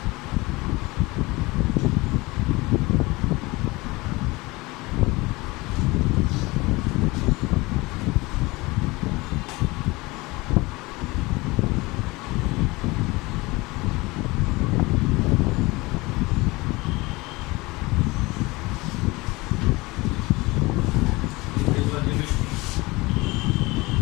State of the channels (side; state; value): right; quieter; 22.7 dB